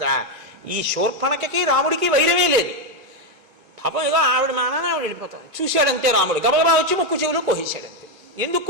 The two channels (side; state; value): both; normal; correlation 0.05